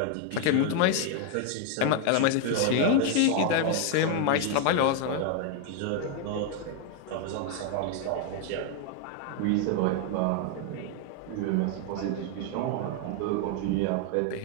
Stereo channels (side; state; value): both; different; correlation 0.01